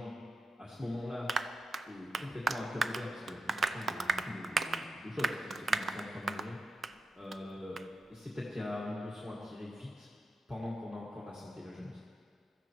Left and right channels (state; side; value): normal; both; correlation 0.87